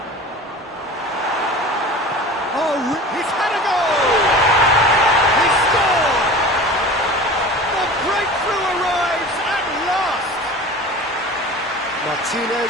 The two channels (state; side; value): normal; both; correlation 0.37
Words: Oh, he's had a goal! He scored! The breakthrough arrives at last!